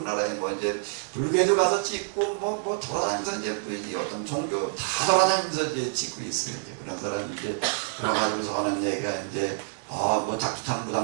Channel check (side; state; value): left; silent; digital silence